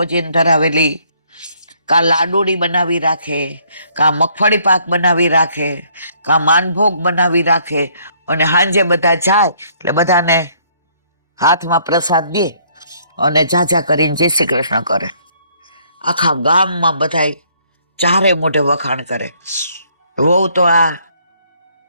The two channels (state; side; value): inverted; both; correlation -0.65